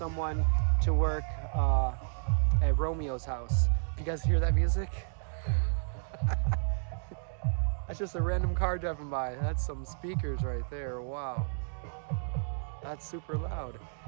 to work at Romeo's house. If you guys hear that music, that's just a random car driving by. That's some speakers right there. Wow, that's super loud.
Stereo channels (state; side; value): silent; left; digital silence